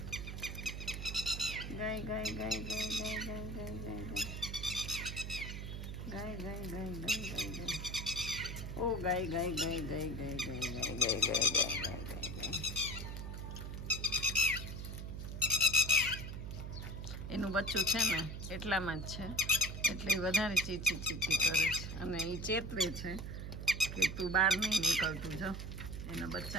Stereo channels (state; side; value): noise; right; hum, 6 dB below the sound